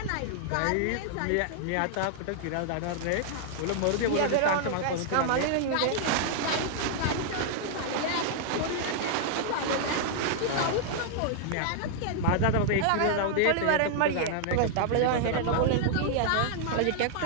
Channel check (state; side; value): different; both; correlation -0.01